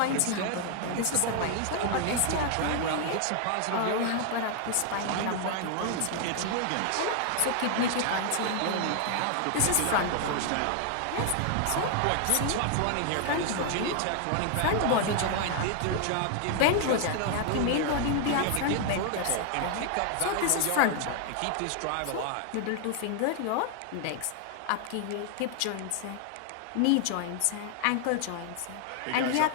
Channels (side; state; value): both; different; correlation 0.00